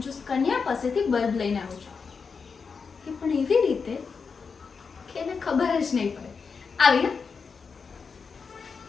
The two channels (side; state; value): right; quieter; 5.4 dB